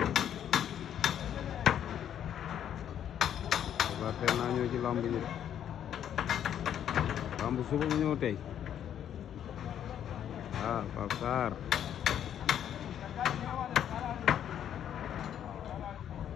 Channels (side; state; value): right; quieter; 9.8 dB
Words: teel naa ñëw ci lamb ji lamb suba mu ñëw tey Pape Sarr